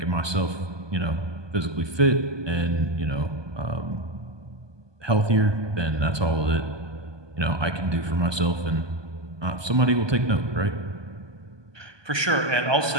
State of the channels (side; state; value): left; late; 1.2 ms